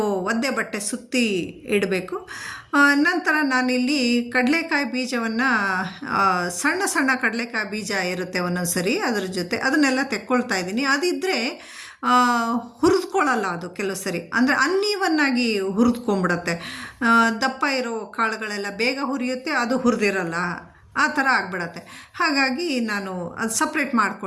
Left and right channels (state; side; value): identical; both; correlation 1.00